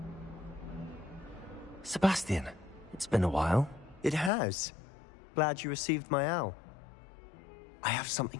Sebastian, it's been a while. It has. Glad you received my owl. I have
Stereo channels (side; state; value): right; drops out; at 4.3 s